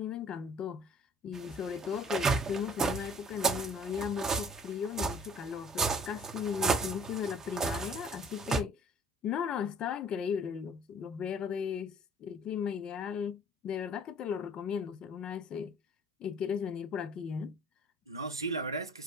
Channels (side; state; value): both; normal; correlation 0.53